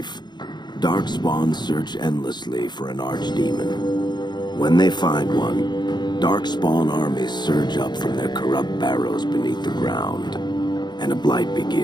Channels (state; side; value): late; right; 0.21 ms